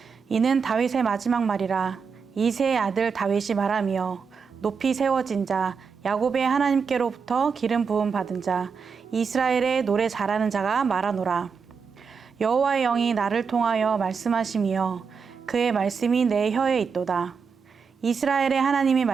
이는 다윗의 마지막 말이라. 이새의 아들 다윗이 말하며 높이 세워진 자, 야곱의 하나님께로부터 기름 부음 받은 자, 이스라엘의 노래 잘하는 자가 말하노라. 여호와의 영이 나를 통하여 말씀하시며 그의 말씀이 내 혀에 있도다. 이스라엘의 하나님이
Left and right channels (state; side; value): quieter; left; 5.8 dB